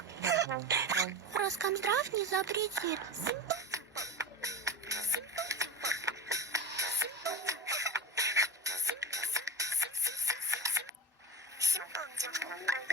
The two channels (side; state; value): both; normal; correlation 0.24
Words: Роскомздрав не запретит.